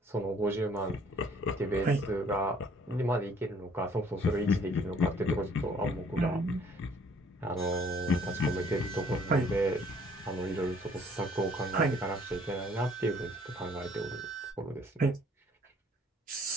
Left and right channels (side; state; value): both; normal; correlation 0.60